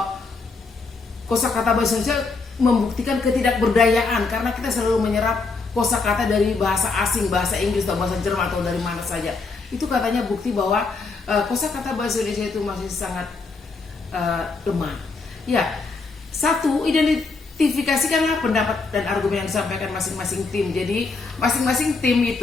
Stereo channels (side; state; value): right; quieter; 4.1 dB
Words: kosakata bahasa Indonesia membuktikan ketidakberdayaan karena kita selalu menyerap kosakata dari bahasa asing, bahasa Inggris atau bahasa Jerman atau dari mana saja. Itu katanya bukti bahwa kosakata bahasa Indonesia itu masih sangat lemah. Ya, 1, identifikasikanlah pendapat dan argumen yang disampaikan masing-masing tim. Jadi masing-masing tim